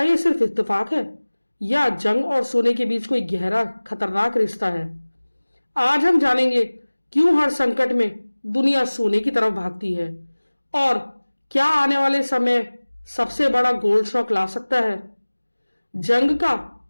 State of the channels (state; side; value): inverted; both; correlation -1.00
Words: यह सिर्फ इत्तेफाक है या जंग और सोने के बीच कोई गहरा खतरनाक रिश्ता है? आज हम जानेंगे क्यों हर संकट में दुनिया सोने की तरफ भागती है और क्या आने वाले समय सबसे बड़ा गोल्ड शॉक ला सकता है। जंग का